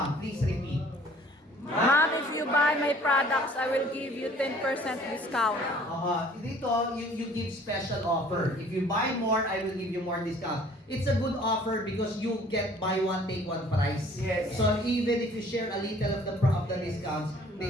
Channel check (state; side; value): normal; both; correlation 0.54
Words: Please repeat. Ma'am, if you buy my products, I will give you 10% discount. Dito, you give special offer. If you buy more, I will give you more discount. It's a good offer because you get buy one, take one price. Yes. So even if you share a little of the discounts,